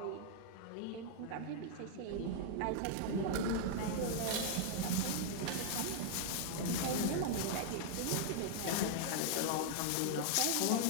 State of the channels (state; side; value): different; both; correlation 0.00